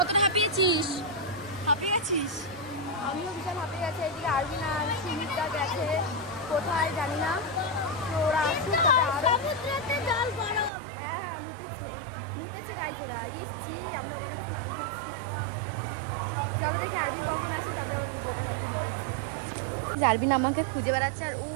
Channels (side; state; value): left; drops out; at 10.7 s